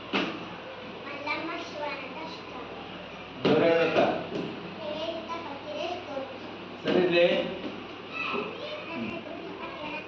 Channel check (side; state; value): both; identical; correlation 1.00